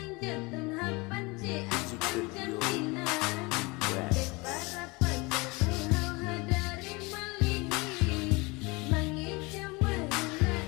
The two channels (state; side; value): quieter; right; 25.8 dB